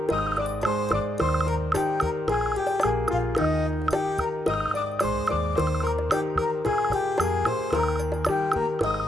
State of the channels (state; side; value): normal; both; correlation 0.81